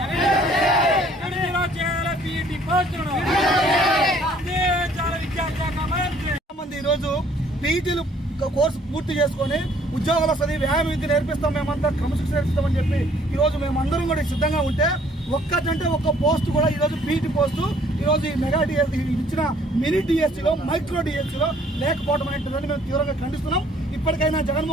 విడుదల చేయాలి బీటీ పోస్టులను చాలా విద్యాశాఖ మంత్రి ఈరోజు పీటీలు కోర్సు పూర్తి చేసుకొని ఉద్యోగాలు వస్తుంది వ్యాయామ విద్య నేర్పిస్తాం, మేమంతా క్రమశిక్షణ నేర్పిస్తామని చెప్పి ఈరోజు మేమందరం కూడా సిద్ధంగా ఉంటే ఒక్కటంటే ఒక్క పోస్ట్ కూడా ఈరోజు పీటీ పోస్టు ఈరోజు ఈ మెగా డిఎస్సీ ఇచ్చిన మినీ డిఎస్సీలో మైక్రో డిఎస్సీలో లేకపోవడం అనేటువంటిదని మేము తీవ్రంగా ఖండిస్తున్నాం. ఇప్పటికైనా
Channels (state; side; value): normal; both; correlation 0.60